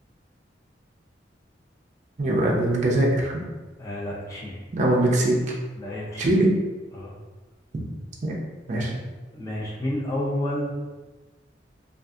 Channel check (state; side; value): normal; both; correlation 0.67